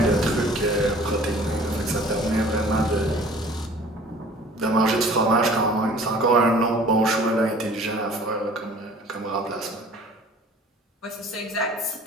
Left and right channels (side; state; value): both; normal; correlation 0.49